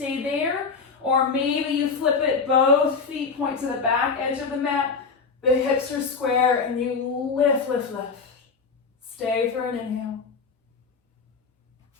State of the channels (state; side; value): quieter; right; 5.0 dB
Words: there, or maybe you flip it. Both feet point to the back edge of the mat. The hips are square and you lift, lift, lift. Stay for an inhale.